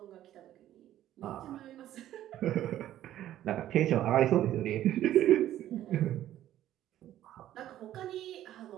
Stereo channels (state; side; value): quieter; left; 12.7 dB